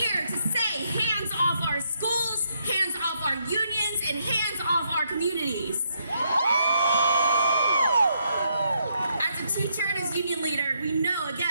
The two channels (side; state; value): both; inverted; correlation -0.76